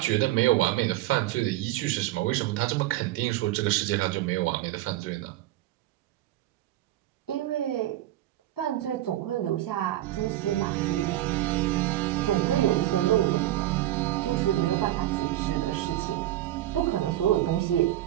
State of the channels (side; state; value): left; quieter; 14.6 dB